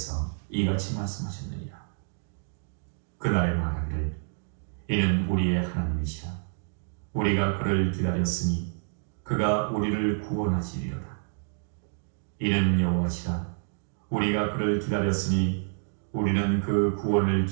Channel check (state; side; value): silent; left; digital silence